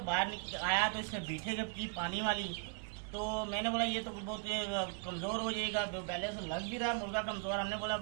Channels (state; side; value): quieter; left; 39.4 dB